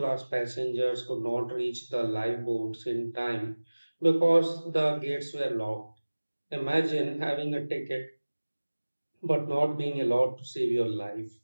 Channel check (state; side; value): inverted; both; correlation -1.00